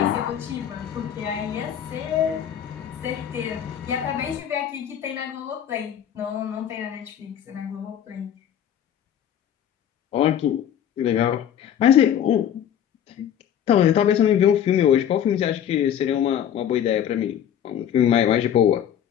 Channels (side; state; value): right; quieter; 9.7 dB